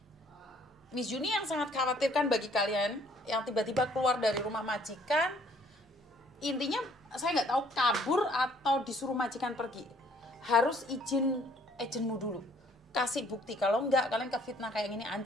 Miss Juni yang sangat khawatirkan bagi kalian yang tiba-tiba keluar dari rumah majikan, intinya saya nggak tahu kabur atau disuruh majikan pergi, harus izin agenmu dulu, kasih bukti. Kalau nggak, kalian kefitnah kayak gini,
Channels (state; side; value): normal; both; correlation 0.61